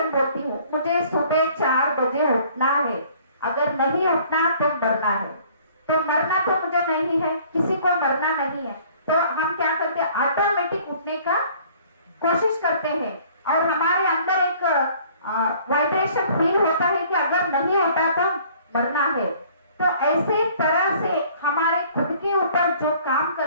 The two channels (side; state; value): both; inverted; correlation -0.55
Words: बोलती हूँ, मुझे सुबह 4 बजे उठना है, अगर नहीं उठना तो मरना है। तो मरना तो मुझे नहीं है, किसी को मरना नहीं है, तो हम क्या करते हैं, ऑटोमेटिक उठने का कोशिश करते हैं, और हमारे अंदर एक वाइब्रेशन फील होता है कि अगर नहीं होता तो मरना है। तो ऐसे तरह से हमारे खुद के ऊपर जो काम